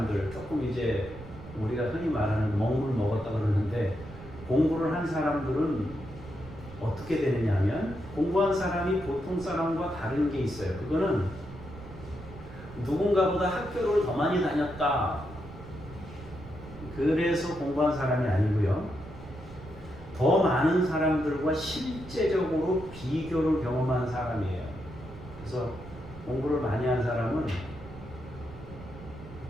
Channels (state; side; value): noise; right; rumble, 15 dB below the sound